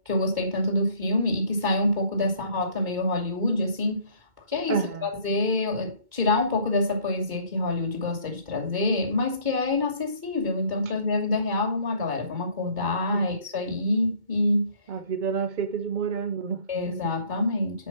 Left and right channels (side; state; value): left; late; 2.2 ms